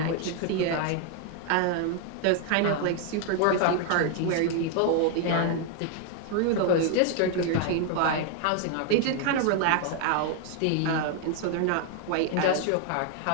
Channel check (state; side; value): different; both; correlation 0.00